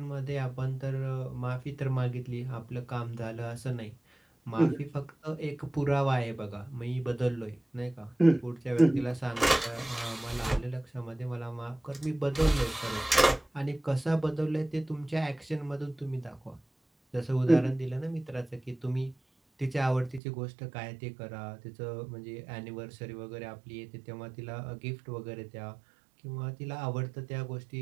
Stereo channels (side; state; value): left; drops out; at 20.2 s